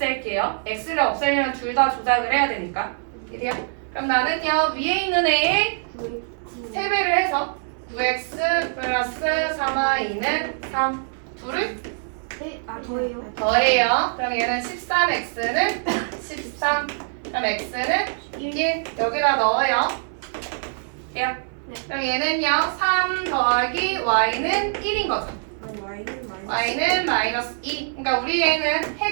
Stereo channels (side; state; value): left; silent; 63 dB below the other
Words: x를 없애려면 둘 다 조작을 해야 되니까. 이래요? 그럼 나는요 위에 있는 애에 3배를 해서 9x 플러스 3y는 3 둘을 더해요. 더해요. 그럼 얘는 13x는 13. 그럼 x는 1 여기다 넣어요. 돼요? 그럼 얘는요 3 더하기 y는 1인 거죠. y는 마이너스 2. 그러니까 우리 얘는